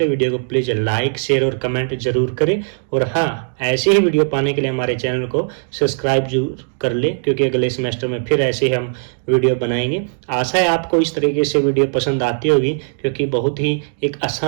वीडियो को प्लीज़ लाइक शेयर और कमेंट जरूर करें। और हाँ, ऐसे ही वीडियो पाने के लिए हमारे चैनल को सब्सक्राइब जरूर कर ले, क्योंकि अगले सेमेस्टर में फिर ऐसे ही हम वीडियो बनाएंगे। आशा है आपको इस तरीके से वीडियो पसंद आती होगी, क्योंकि बहुत ही एक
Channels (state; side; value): silent; left; digital silence